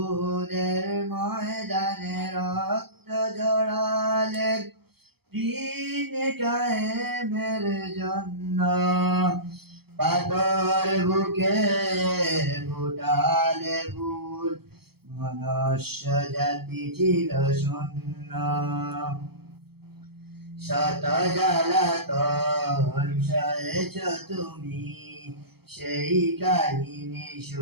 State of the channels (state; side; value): late; left; 0.96 ms